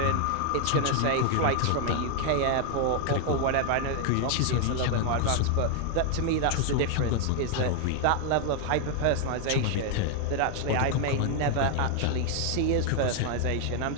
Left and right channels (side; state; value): both; different; correlation 0.00